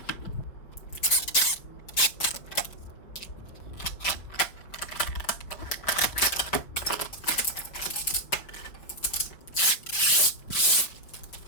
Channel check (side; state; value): right; late; 5.2 ms